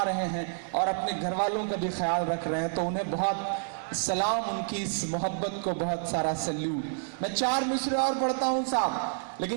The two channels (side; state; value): left; silent; digital silence